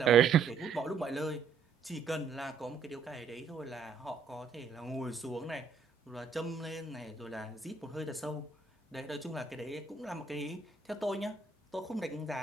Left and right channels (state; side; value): quieter; left; 5.4 dB